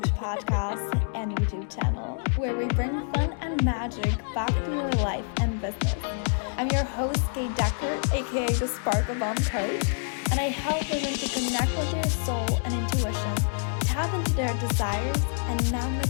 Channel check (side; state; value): right; silent; digital silence